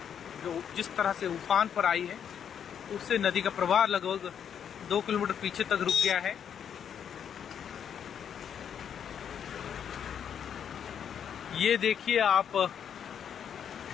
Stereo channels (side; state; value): right; quieter; 8.4 dB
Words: जो जिस तरह से उफान पर आई है उससे नदी का प्रवाह लगभग 2 किलोमीटर पीछे तक रुक गया है। ये देखिए आप